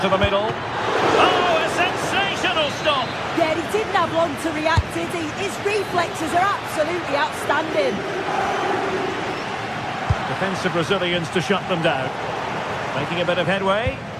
the middle. Oh, a sensational stop! Yeah, he didn't have long to react, did he? His reflexes are absolutely outstanding. Defensive Brazilians to shut them down. Making a bit of headway.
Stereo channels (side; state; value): both; identical; correlation 1.00